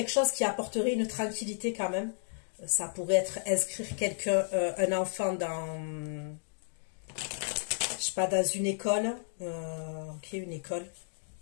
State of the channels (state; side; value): silent; right; digital silence